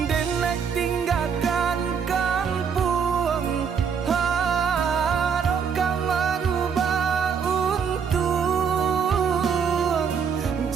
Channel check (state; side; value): quieter; left; 6.7 dB